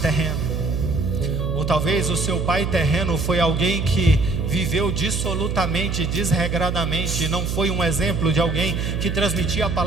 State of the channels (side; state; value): right; noise; hum, 2 dB below the sound